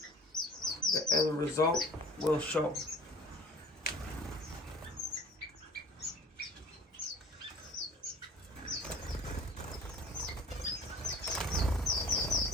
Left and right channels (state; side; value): normal; both; correlation 0.47